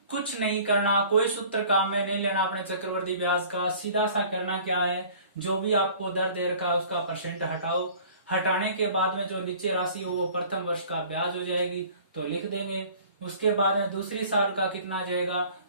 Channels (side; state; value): both; inverted; correlation -0.49